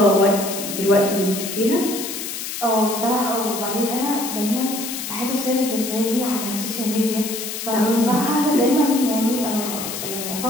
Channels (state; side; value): noise; left; hiss, 6 dB below the sound